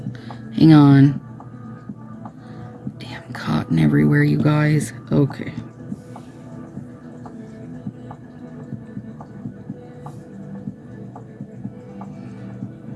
Hang on. Damn cotton everywhere, you guys. Okay.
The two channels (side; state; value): both; identical; correlation 1.00